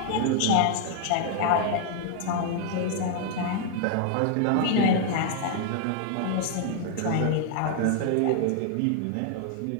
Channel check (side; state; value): both; different; correlation 0.00